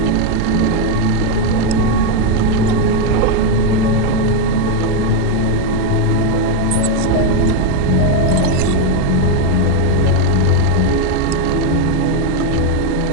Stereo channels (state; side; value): different; both; correlation 0.02